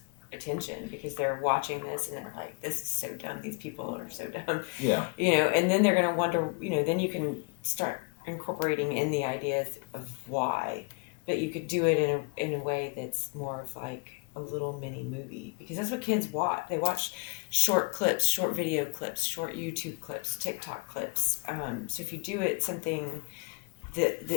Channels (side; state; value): right; quieter; 31.9 dB